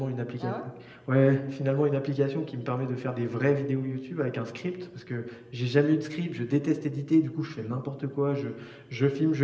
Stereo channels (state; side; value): identical; both; correlation 1.00